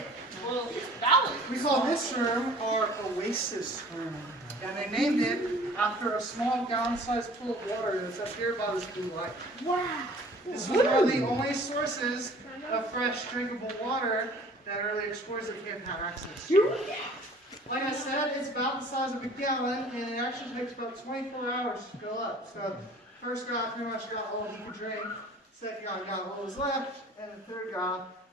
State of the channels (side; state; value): both; normal; correlation 0.49